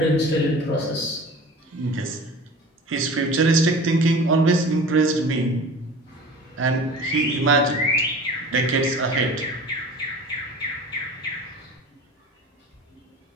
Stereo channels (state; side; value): normal; both; correlation 0.39